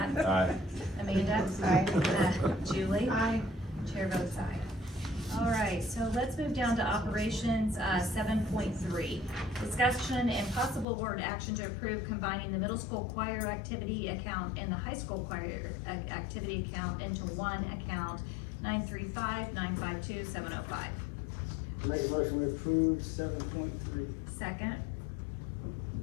Aye. Amanda? Aye. Julie? Aye. Chair votes aye. All right, so let's move down to operations, 7.3. Discussion and possible board action to approve combining the middle school choir activity account and the high school choir activity account into one account, 935-952-705. Make a motion, we approve 7.3. Second.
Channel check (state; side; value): drops out; right; at 10.9 s